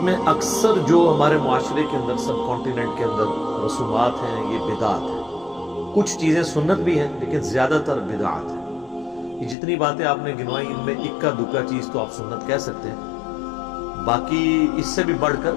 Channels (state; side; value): drops out; right; at 9.6 s